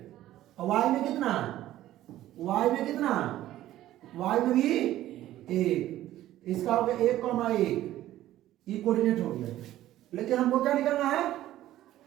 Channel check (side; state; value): left; quieter; 14.0 dB